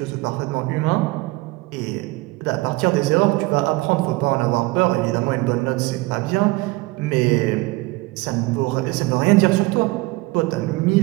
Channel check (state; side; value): quieter; left; 21.4 dB